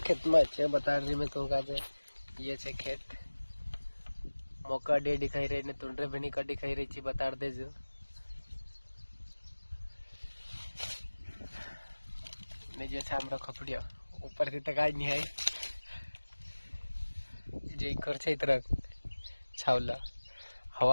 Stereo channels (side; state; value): both; inverted; correlation -1.00